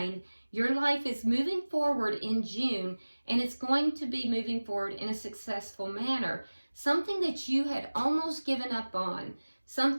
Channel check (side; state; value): both; inverted; correlation -1.00